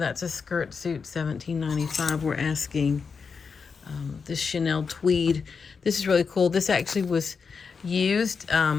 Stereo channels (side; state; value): right; quieter; 5.5 dB